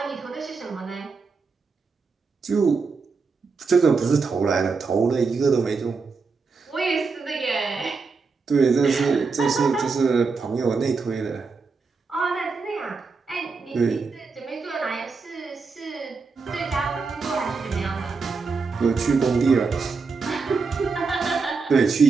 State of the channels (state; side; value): quieter; left; 4.6 dB